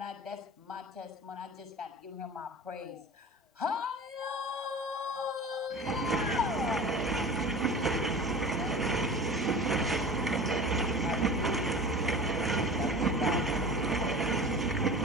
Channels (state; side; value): normal; both; correlation 0.36